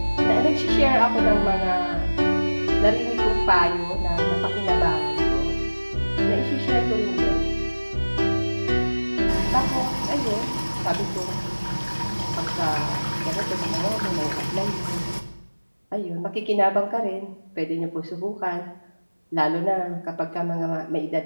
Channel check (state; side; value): inverted; both; correlation -1.00